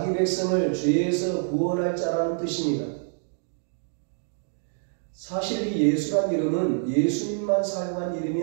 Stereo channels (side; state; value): left; silent; digital silence